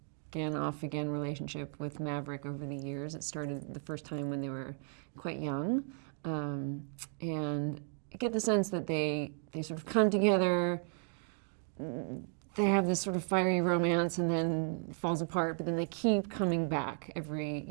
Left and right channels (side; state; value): left; silent; 55 dB below the other